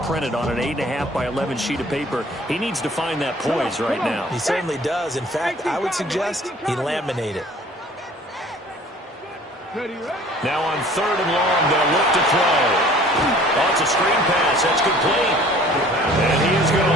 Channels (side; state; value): both; normal; correlation 0.51